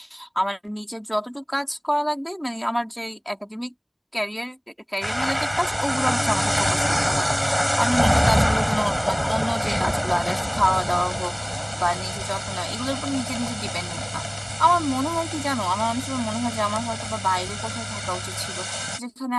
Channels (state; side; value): identical; both; correlation 1.00